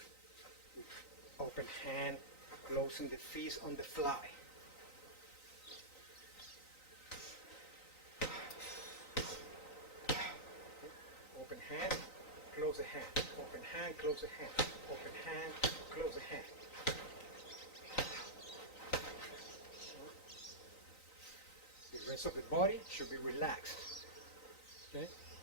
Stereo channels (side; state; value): right; late; 3.9 ms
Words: with open hand, closing the fist on the fly. Open hand, close the hand, open hand, close the hand, open hand, close the hand. The rest of the body should be relaxed. Okay?